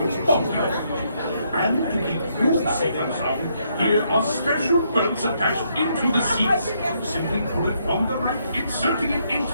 popular. And to keep you safe and sound, here are special belts attached into the seats. Simply pull it from the right, inserting it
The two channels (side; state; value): both; inverted; correlation -0.74